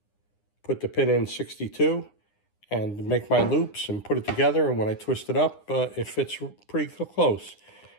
put the pin in 62 and make my loops and put it together, and when I twist it up, it fits pretty close.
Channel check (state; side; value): late; right; 9.8 ms